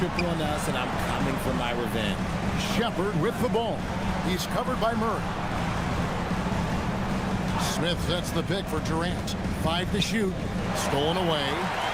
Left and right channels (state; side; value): identical; both; correlation 1.00